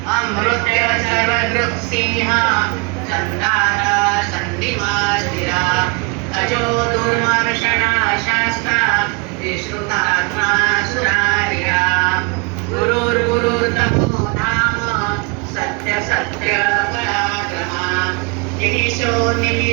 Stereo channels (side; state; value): left; quieter; 31.5 dB